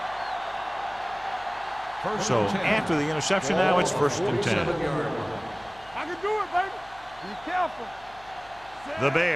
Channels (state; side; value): noise; left; hum, 25 dB below the sound